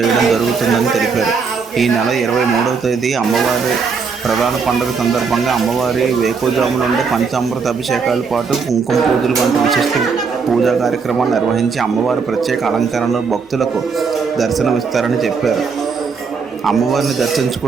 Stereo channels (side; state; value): left; quieter; 5.3 dB